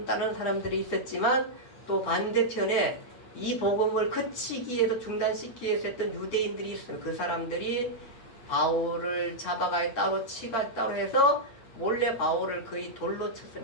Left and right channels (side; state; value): right; late; 8.1 ms